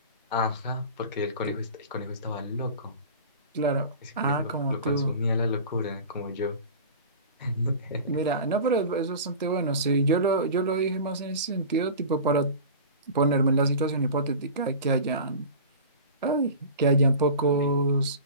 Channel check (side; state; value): both; inverted; correlation -0.35